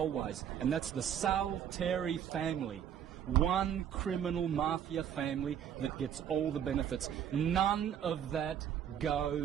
and that's the Salteri family. One criminal mafia family that gets all the benefits. None of that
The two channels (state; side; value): quieter; left; 9.3 dB